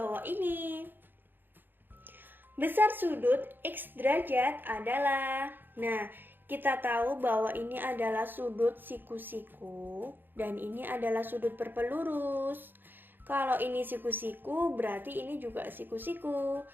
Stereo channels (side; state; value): left; late; 0.094 ms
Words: ini. Besar sudut X derajat adalah... Nah, kita tahu bahwa ini adalah sudut siku-siku dan ini adalah sudut berpelurus. Kalau ini siku-siku, berarti ini juga siku-siku.